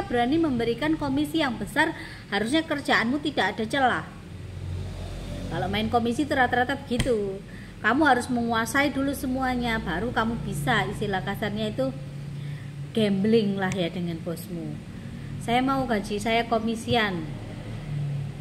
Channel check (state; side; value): identical; both; correlation 1.00